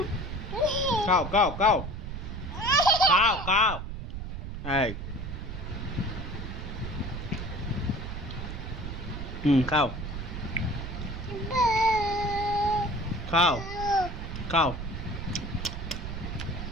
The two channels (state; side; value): noise; right; rumble, 6 dB below the sound